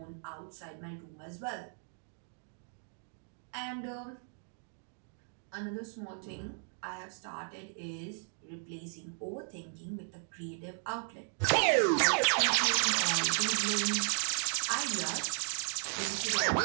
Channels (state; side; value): silent; left; 54 dB below the other